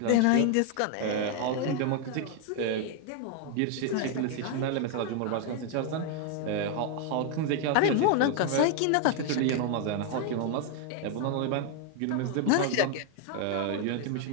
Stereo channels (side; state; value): both; different; correlation 0.00